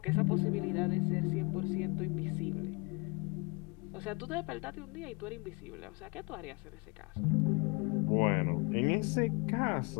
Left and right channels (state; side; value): quieter; right; 30.4 dB